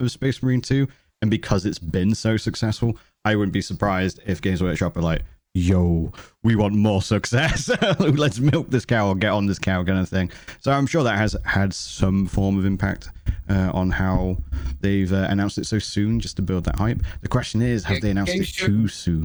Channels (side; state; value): both; identical; correlation 1.00